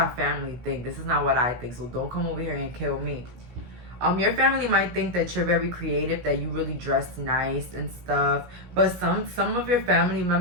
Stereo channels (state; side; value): late; left; 17 ms